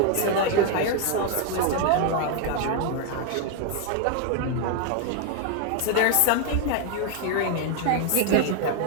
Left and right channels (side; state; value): both; different; correlation 0.01